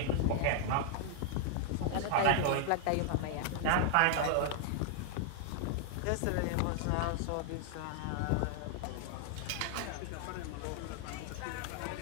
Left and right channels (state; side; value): different; both; correlation 0.00